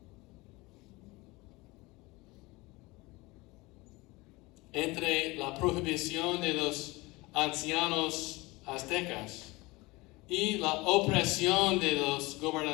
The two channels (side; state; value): right; quieter; 22.8 dB